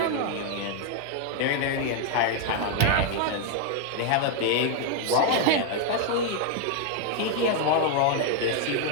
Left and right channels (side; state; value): both; different; correlation 0.00